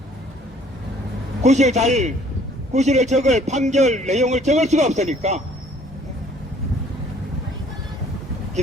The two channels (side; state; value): both; normal; correlation 0.57